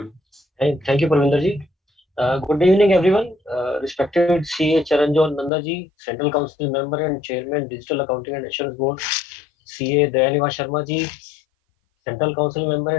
Thank you, Parvinder ji. Good evening, everyone. Respected CA Charanjot Nanda ji, Central Council Member and Chairman, Digital Accounting and Assurance Board, CA Dayaniva Sharma ji, Central Council Member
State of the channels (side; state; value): right; drops out; at 5.5 s